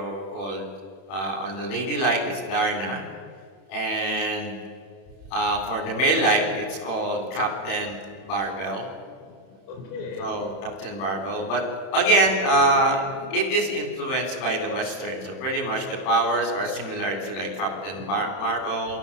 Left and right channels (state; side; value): late; right; 31 ms